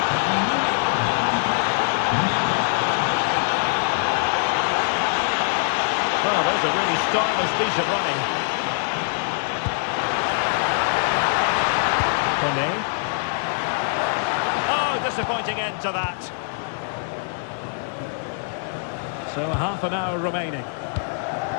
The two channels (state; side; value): silent; right; digital silence